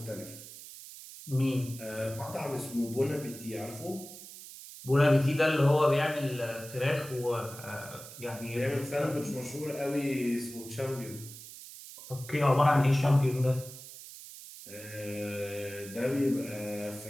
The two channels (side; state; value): right; noise; hiss, 14 dB below the sound